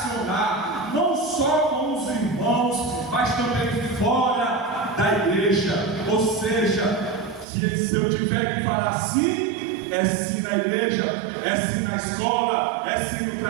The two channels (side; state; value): left; drops out; at 7.5 s